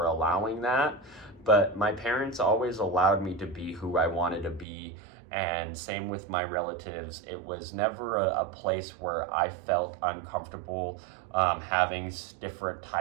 allowing that. But my parents always allowed me to be who I wanted to be, and same with my relatives. It was never a place where I felt uncomfortable having different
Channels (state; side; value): drops out; left; at 4.7 s